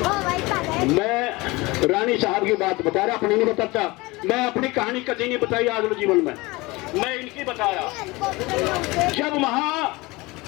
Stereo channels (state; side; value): quieter; right; 22.6 dB